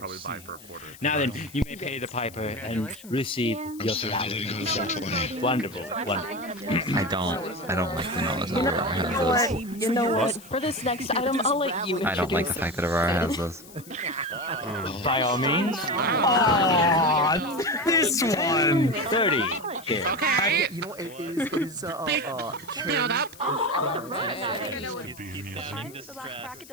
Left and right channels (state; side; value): noise; left; hiss, 20 dB below the sound